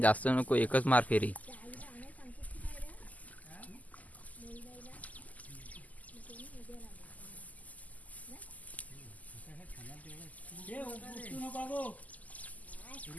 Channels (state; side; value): late; right; 0.077 ms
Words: जास्त नको. एकच मार फेरी.